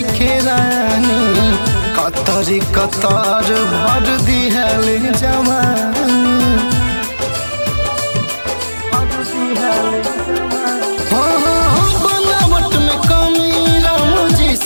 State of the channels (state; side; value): inverted; both; correlation -1.00